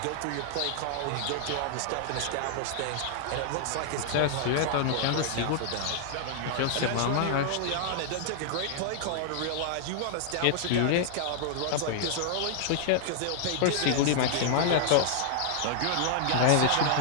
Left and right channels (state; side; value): different; both; correlation -0.01